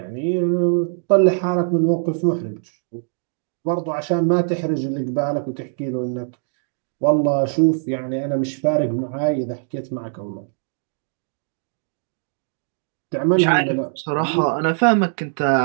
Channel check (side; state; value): left; silent; digital silence